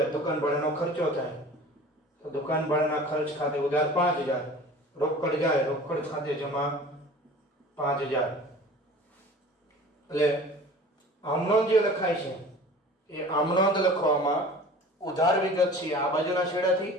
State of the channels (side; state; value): both; normal; correlation 0.42